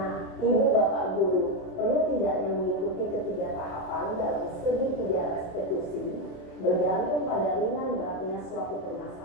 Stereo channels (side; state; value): right; late; 27 ms